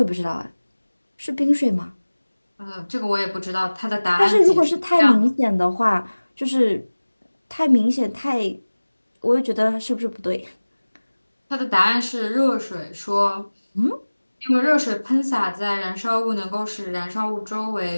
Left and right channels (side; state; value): both; inverted; correlation -1.00